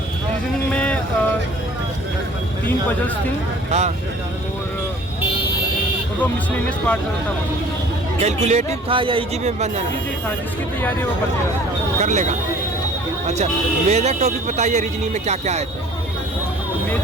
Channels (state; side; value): normal; both; correlation 0.50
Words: रीजनिंग में 3 पजल्स थी। हाँ। और वो मिसलेनियस पार्ट था। वो कैलकुलेटिव था या इजी में बन जाना? इजी था, जिसकी तैयारी वो कर लेगा। अच्छा, मेजर टॉपिक बताइए, रीजनिंग में क्या क्या आए थे?